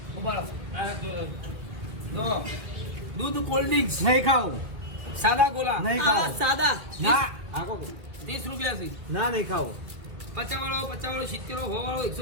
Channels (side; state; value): left; late; 2.2 ms